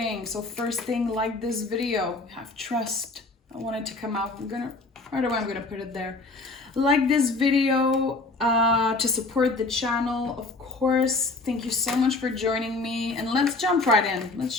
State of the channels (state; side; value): quieter; right; 3.3 dB